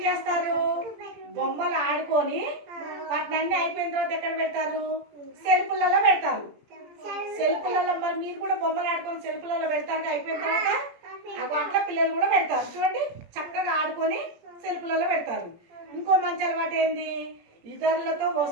చేస్తారు? బొమ్మలు ఆడుకొని వాటిని అయిపోయిన తర్వాత ఎక్కడ పెడతారు? సెల్ఫులలో పెడతారు. సెల్ఫులలో మరి మీరు కూడా బొమ్మలు ఆడుకొని సెల్ఫులలో పెడతారు అయిపోయిన తర్వాత. అట్లా పిల్లలు కూడా పెడతారు. చూడండి చక్కగా ఆడుకొని సెల్ఫులలో పెడతారు. ఇంకో మంచి అలవాటు ఏంది? ఇతరులతో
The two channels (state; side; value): late; left; 17 ms